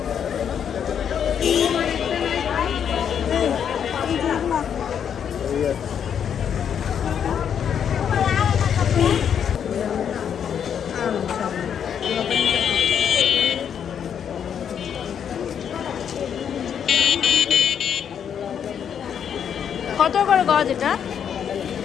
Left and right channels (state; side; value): quieter; right; 8.2 dB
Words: কত করে গজ এটা?